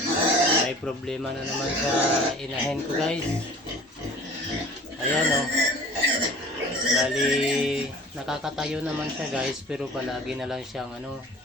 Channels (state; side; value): normal; both; correlation 0.45